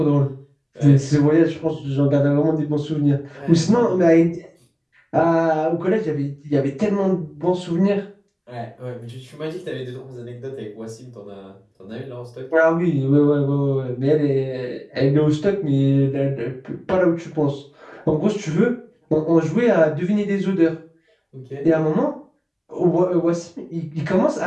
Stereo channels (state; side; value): identical; both; correlation 1.00